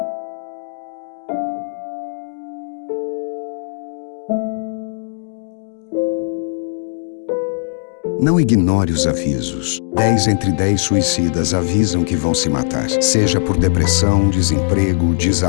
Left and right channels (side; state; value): right; silent; digital silence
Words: Não ignore os avisos. 10 entre 10 suicidas avisam que vão se matar. Seja por depressão, desemprego,